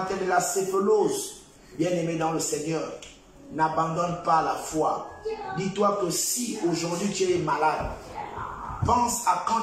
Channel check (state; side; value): identical; both; correlation 1.00